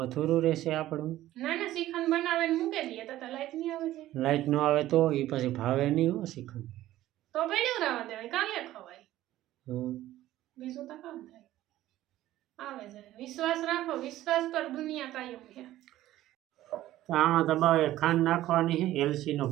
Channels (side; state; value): left; quieter; 14.6 dB